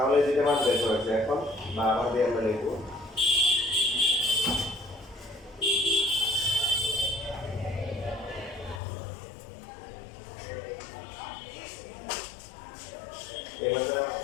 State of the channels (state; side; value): drops out; right; at 8.8 s